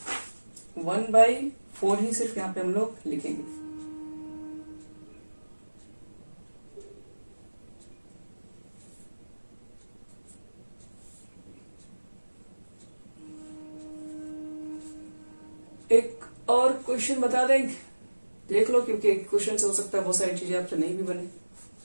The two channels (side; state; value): both; inverted; correlation -1.00